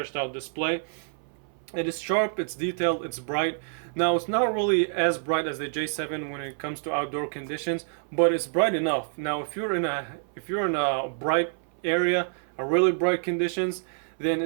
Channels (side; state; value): left; silent; 60 dB below the other